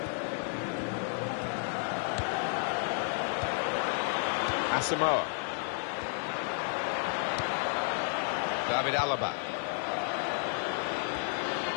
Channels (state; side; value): silent; right; 56 dB below the other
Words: Asamoah. David Alaba.